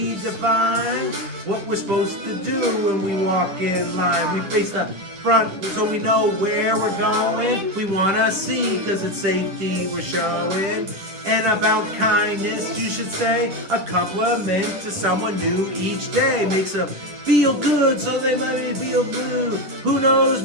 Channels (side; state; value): left; late; 9.8 ms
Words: define what we're supposed to do when we walk in line. We face the front so we know where we're going. We wanna see cause it's safety we're showing. And about kindness, you should say a compliment to someone new each day makes them feel good, so they might feel blue. Who knows,